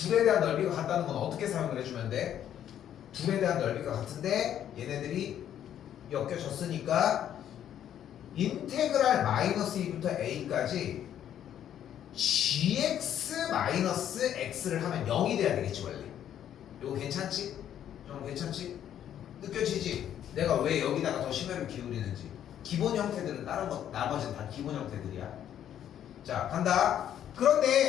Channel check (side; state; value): right; quieter; 10.3 dB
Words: 대한 넓이가 같다는 건 어떻게 사용을 해주면 돼? 둘에 대한 넓이가 같은데 얘네들이 엮여졌으니까 인테그랄 마이너스 2부터 a까지 gx 마이너스 x를 하면 0이 돼야 되겠지 원래. 이거 괜찮지? 좀 괜찮지? 느껴지지? 내가 왜 여기다가 더 심혈을 기울이는지. 기본 형태들은 다른 거 나머지는 다 기본 형태들이야. 자 간다.